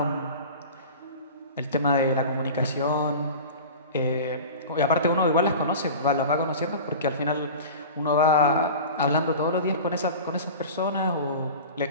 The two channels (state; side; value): inverted; both; correlation -0.34